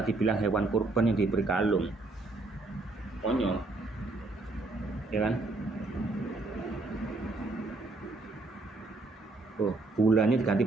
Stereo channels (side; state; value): left; quieter; 3.2 dB